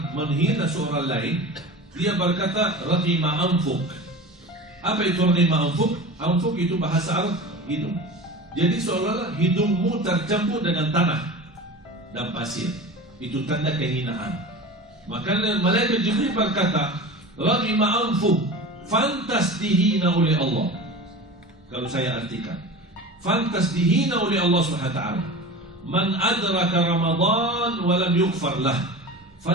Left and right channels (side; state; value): both; normal; correlation 0.33